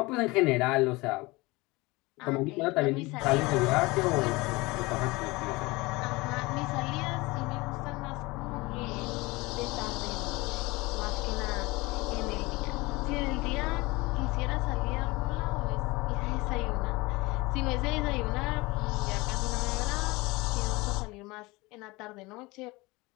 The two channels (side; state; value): right; quieter; 23.0 dB